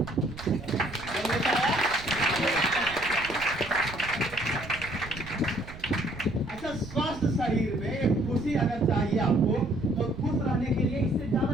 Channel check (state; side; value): noise; right; rumble, 14 dB below the sound